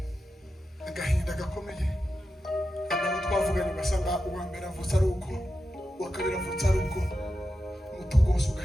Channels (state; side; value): normal; both; correlation 0.90